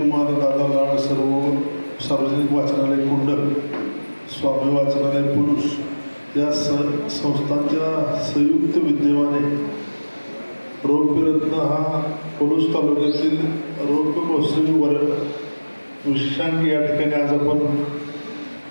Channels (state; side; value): inverted; both; correlation -1.00